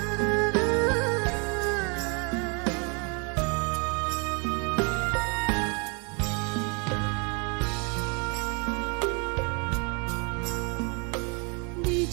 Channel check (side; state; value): left; quieter; 33.8 dB